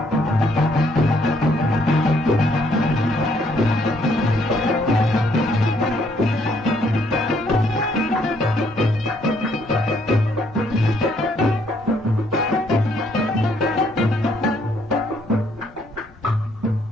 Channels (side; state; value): both; normal; correlation 0.68